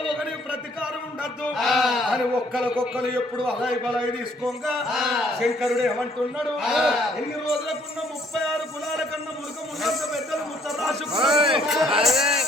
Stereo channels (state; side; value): normal; both; correlation 0.63